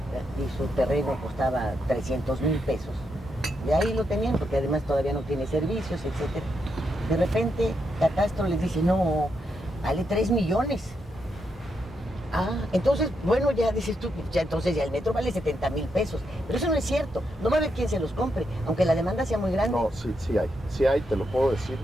y su terreno costaba 300,000 pesos, y ahí lo tenían porque además todavía no tiene servicios, etcétera. De repente Catastro les dice, no, vale 3 millones. Ah, entonces, bueno, ya dices tú, ya entonces ya el metro vale 70,000 pesos. Pero eso no es cierto. No va a haber quien se los compre, aunque la demanda sea muy grande. No, sí hay, te lo puedo decir,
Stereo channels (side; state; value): both; normal; correlation 0.81